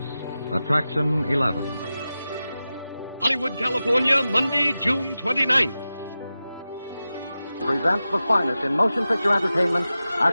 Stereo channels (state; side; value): inverted; both; correlation -0.93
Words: Attraction 11. Hollywood, California, Monday, June 29th. Presents the finest in motion picture entertainment,